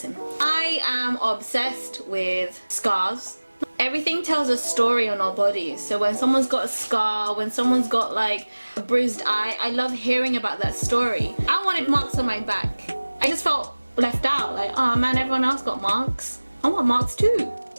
him. I am obsessed with scars. Everything tells a story on our bodies. So when someone's got a scar, when someone's got like a bruised eye, I love hearing about that story. I wanted marks on my back. I just felt left out. Like, oh man, everyone else got marks. I want marks too.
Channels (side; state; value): both; inverted; correlation -1.00